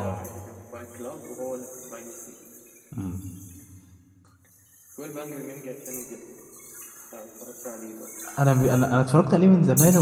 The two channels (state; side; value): identical; both; correlation 1.00